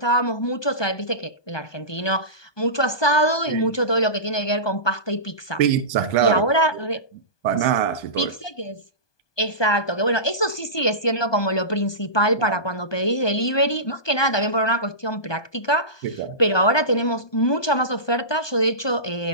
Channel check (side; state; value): right; late; 1.2 ms